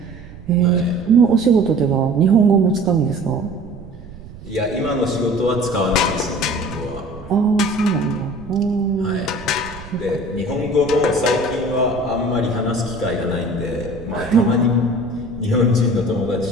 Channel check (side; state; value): right; noise; rumble, 17 dB below the sound